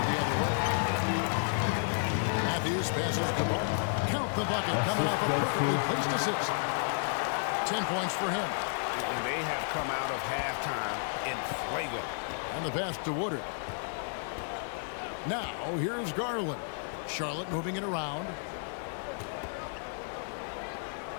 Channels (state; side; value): silent; right; digital silence